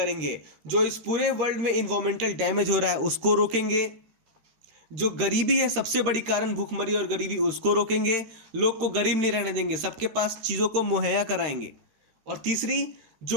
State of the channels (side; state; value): left; late; 13 ms